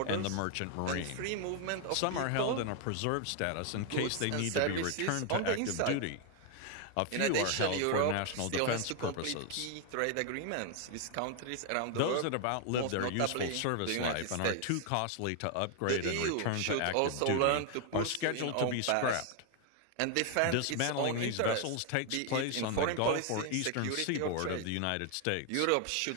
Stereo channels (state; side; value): different; both; correlation 0.00